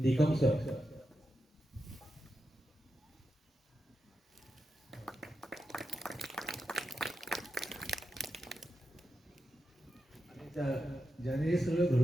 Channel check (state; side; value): normal; both; correlation 0.89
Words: सर, ज्याने हे सगळं